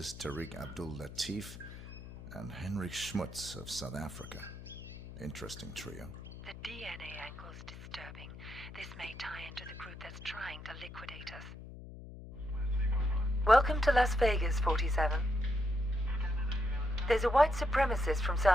Tariq Abdul Latif, and Henrik Schmutz of South Africa. Interesting trio. The DNA angle's disturbing. This may tie into the group that's trying to liquidate us. Welcome to Las Vegas, 47. There's a white supremacist from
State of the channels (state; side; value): noise; left; hum, 13 dB below the sound